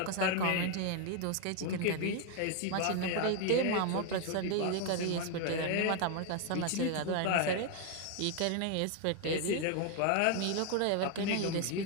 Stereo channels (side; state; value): both; different; correlation 0.01